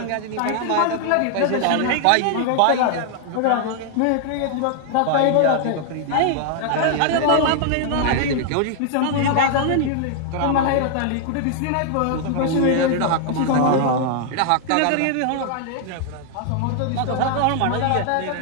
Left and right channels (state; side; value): different; both; correlation 0.00